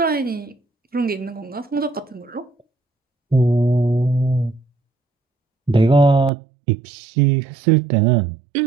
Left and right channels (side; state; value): left; drops out; at 6.3 s